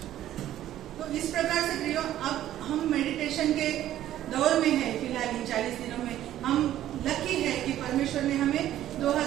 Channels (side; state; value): left; quieter; 12.7 dB